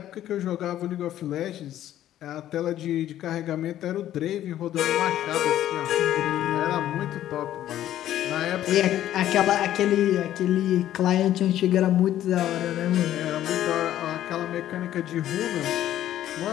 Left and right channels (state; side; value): quieter; right; 12.4 dB